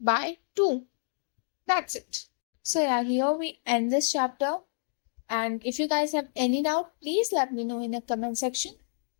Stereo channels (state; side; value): silent; right; digital silence